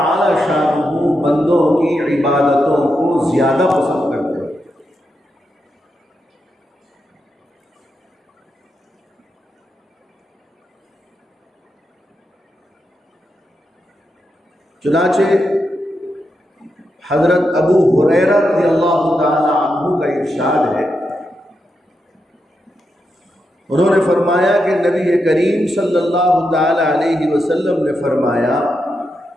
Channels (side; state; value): both; normal; correlation 0.85